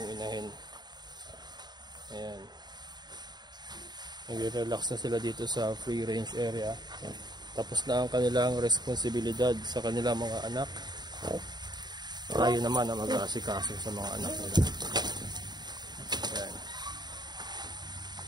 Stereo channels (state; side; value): late; left; 0.20 ms